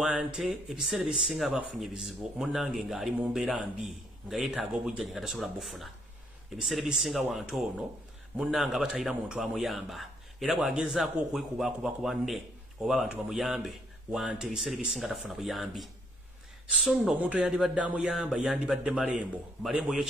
ebiseera bisinga abafunye bizibu munnange nga ali mu mbeera mbi nga yeetaaga obujjanyi nga tasobola buffuna. Ebiseera bisinga wante ono munnange abatayira muntu amuyamba era bw'agezaako okwekubakuba ku banne oba abantu bamuyambe wante ebiseera bisinga tafuna buyambi. So nno omuntu yandibadde amuyamba yandibadde malembo yo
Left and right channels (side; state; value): both; normal; correlation 0.69